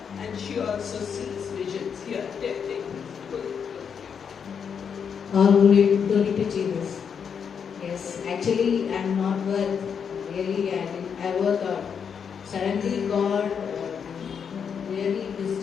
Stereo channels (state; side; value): quieter; right; 7.0 dB